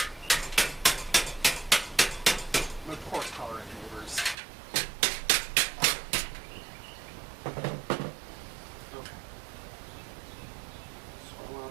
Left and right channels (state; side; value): drops out; left; at 4.4 s